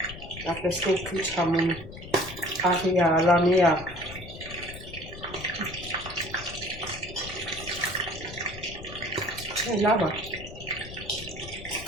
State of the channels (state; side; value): noise; left; rumble, 13 dB below the sound